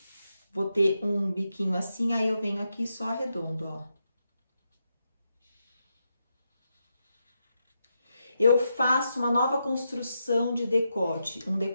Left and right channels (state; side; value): inverted; both; correlation -0.84